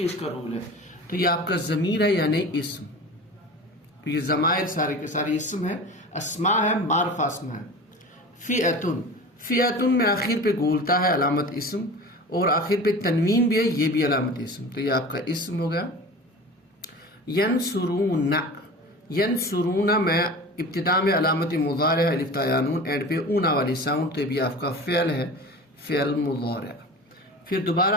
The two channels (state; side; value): normal; both; correlation 0.36